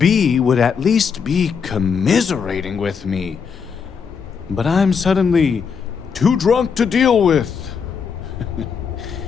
would at least be commiserating with me. But I'm suddenly too drunk to deal with.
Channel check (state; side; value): quieter; right; 6.2 dB